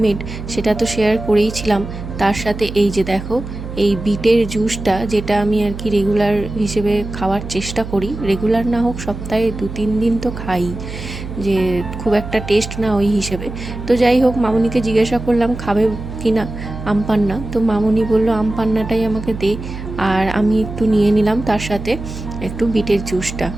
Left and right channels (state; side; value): noise; right; hum, 9 dB below the sound